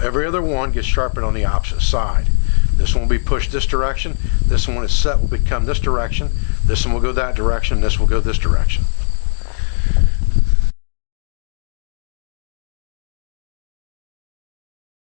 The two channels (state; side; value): silent; right; digital silence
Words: other one gets sharpened on the opposite side. This one will be pushed this direction. This one, when it's set, will become this direction. This one will go that direction. This will go this direction.